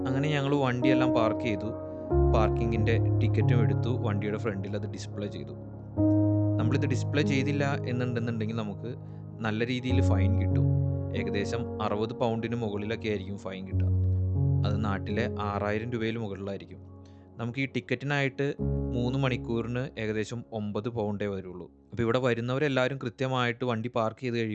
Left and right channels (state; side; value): identical; both; correlation 1.00